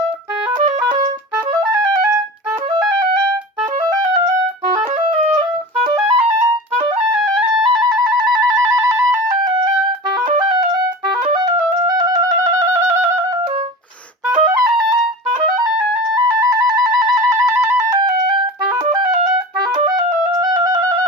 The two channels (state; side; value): normal; both; correlation 0.33